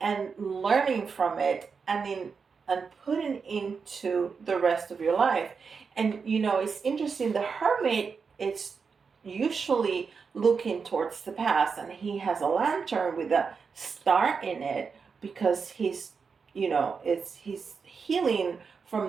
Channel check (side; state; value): left; quieter; 5.5 dB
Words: learning from it, and putting into the rest of your life. And it's interesting, the Hermit, it's usually looking towards the past, and he has a lantern with a star in it, because he's healing from